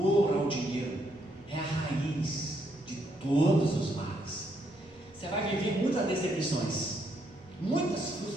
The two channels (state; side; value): normal; both; correlation 0.74